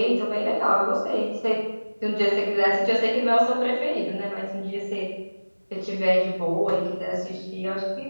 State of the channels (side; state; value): both; inverted; correlation -1.00